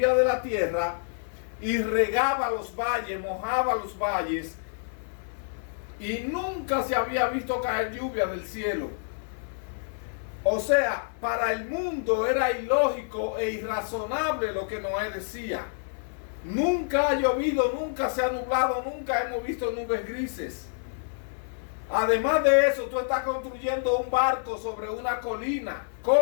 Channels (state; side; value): silent; right; 59 dB below the other